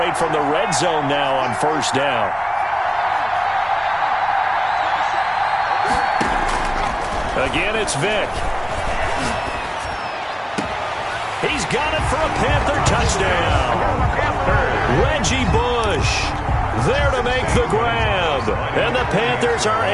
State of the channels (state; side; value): identical; both; correlation 1.00